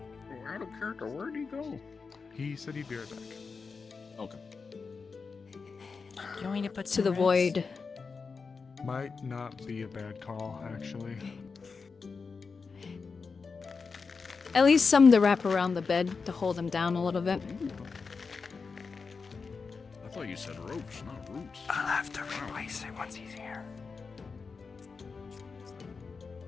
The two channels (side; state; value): right; quieter; 4.9 dB